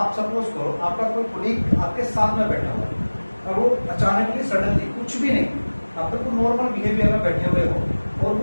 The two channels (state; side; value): inverted; both; correlation -1.00